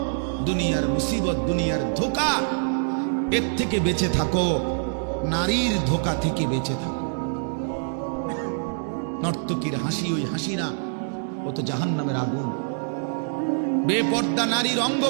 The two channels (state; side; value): silent; left; digital silence